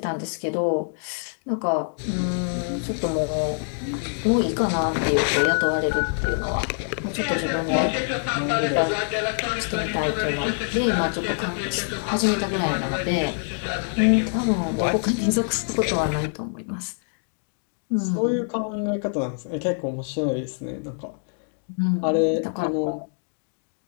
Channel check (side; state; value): right; silent; digital silence